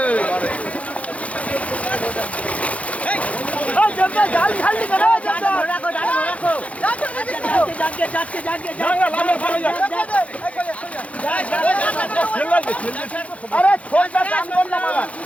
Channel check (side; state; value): right; late; 0.065 ms